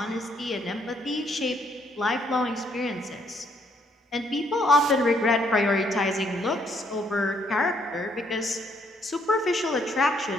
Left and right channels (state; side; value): normal; both; correlation 0.69